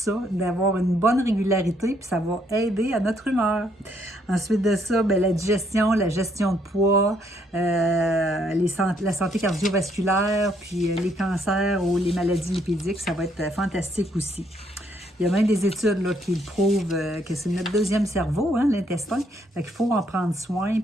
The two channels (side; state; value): both; normal; correlation 0.70